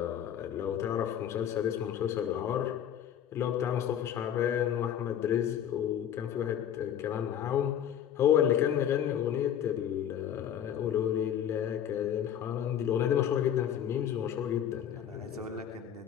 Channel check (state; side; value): quieter; right; 9.8 dB